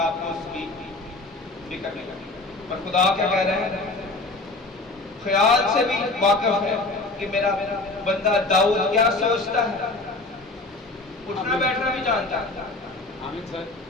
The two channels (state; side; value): quieter; right; 3.1 dB